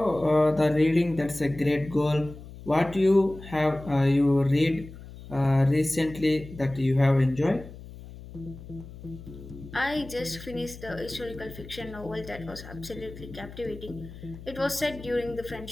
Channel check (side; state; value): left; noise; hum, 15 dB below the sound